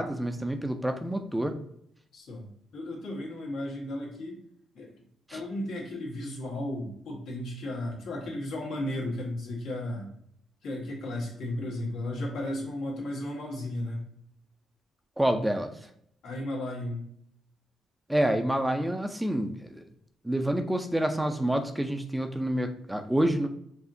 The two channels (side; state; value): both; normal; correlation 0.90